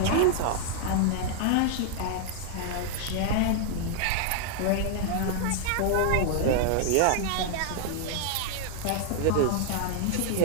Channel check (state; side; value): different; both; correlation 0.00